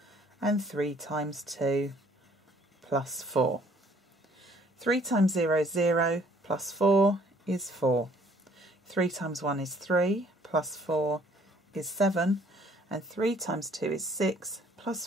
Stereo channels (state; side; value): normal; both; correlation 0.60